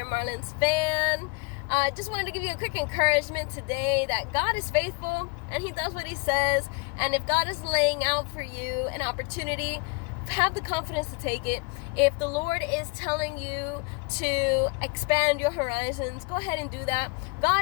a Marlins fan, just wanted to give you a quick encouragement today that God is faithful and He does what He says. And if God is laying out for you an opportunity, have the confidence to take it. If the Lord is telling you to expand your horizons, go ahead and do that.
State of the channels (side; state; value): right; quieter; 30.9 dB